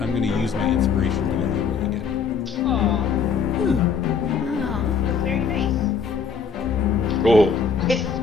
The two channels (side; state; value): right; quieter; 5.9 dB